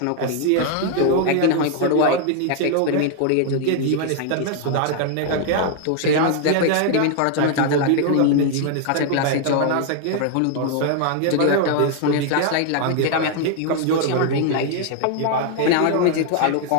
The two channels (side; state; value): both; different; correlation 0.00